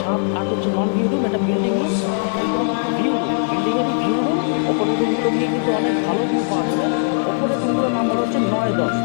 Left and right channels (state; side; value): silent; right; digital silence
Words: 7-8 হচ্ছে নন ভিউ রুম, এটা বিল্ডিং রুম। আর ওপরে কিন্তু ভিউ রুম, বিল্ডিংয়েরই ভিউ রুম। ওপরের রুমগুলো থেকে কিন্তু অনেক ভালো ভিউ পাওয়া যাবে। ওপরের রুমগুলোর নাম্বার হচ্ছে 9-10।